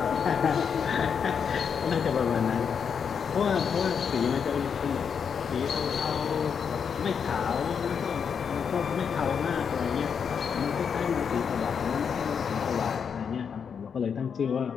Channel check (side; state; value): right; quieter; 6.8 dB